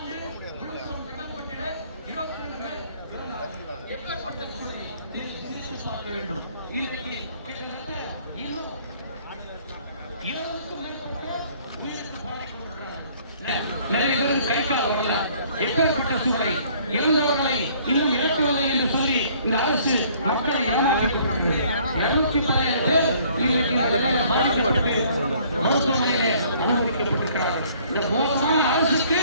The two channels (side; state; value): both; inverted; correlation -0.59